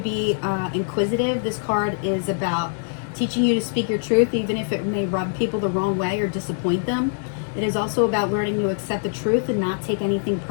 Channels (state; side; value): silent; right; 63 dB below the other